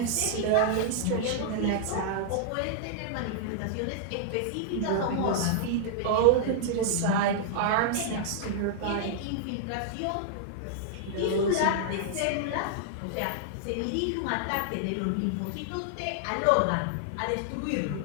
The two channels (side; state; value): both; different; correlation -0.01